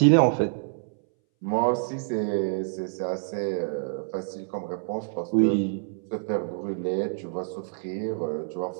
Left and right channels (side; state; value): left; silent; 60 dB below the other